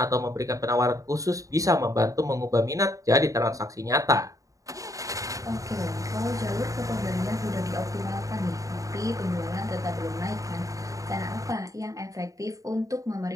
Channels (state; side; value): late; left; 0.16 ms